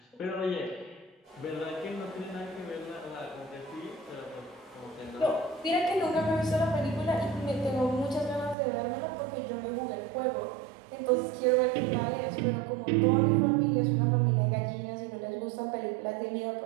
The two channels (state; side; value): drops out; left; at 8.6 s